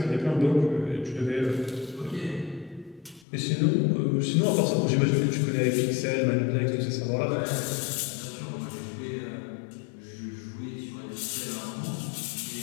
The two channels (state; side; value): drops out; right; at 3.2 s